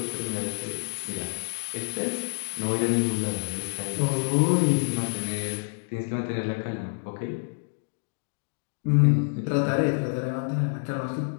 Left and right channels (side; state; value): right; silent; digital silence